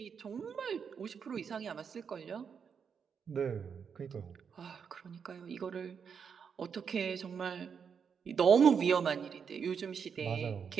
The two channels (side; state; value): left; quieter; 6.7 dB